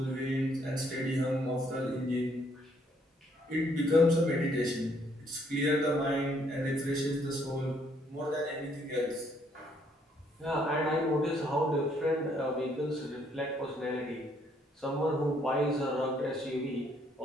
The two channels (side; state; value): both; normal; correlation 0.68